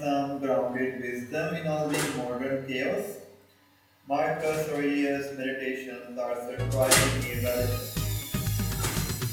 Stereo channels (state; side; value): identical; both; correlation 1.00